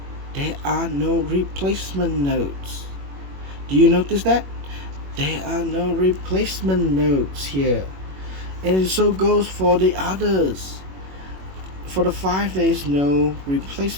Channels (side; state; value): left; late; 21 ms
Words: there are no replacement notes. Do you notice that? There are no replacement notes here. And so goes for the others. For the 5, there is no